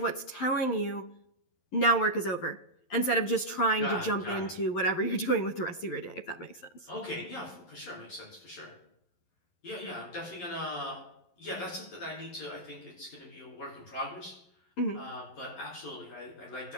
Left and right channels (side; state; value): right; late; 11 ms